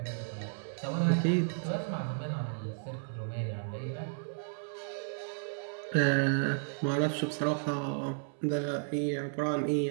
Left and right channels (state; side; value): silent; left; 56 dB below the other